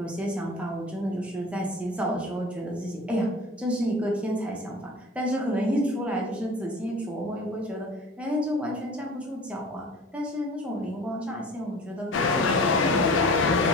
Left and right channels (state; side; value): normal; both; correlation 0.41